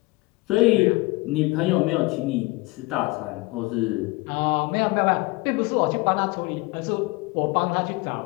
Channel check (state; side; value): quieter; right; 23.6 dB